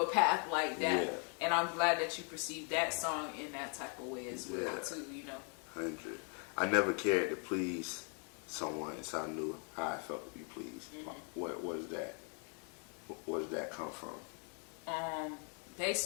path like that. Yeah. And I'm glad that you perceived that song in that type of way as well, too, you know. 100. I never cared to please someone until I knew how I felt to be pleased. What is that? Where does that come from?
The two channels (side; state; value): right; quieter; 39.8 dB